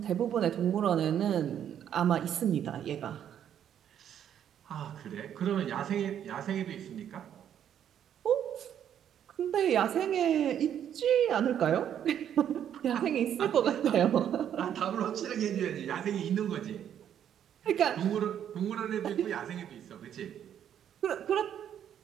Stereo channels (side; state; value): left; quieter; 9.6 dB